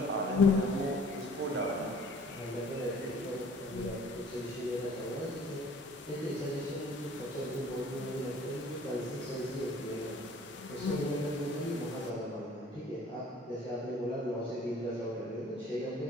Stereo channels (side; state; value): both; normal; correlation 0.52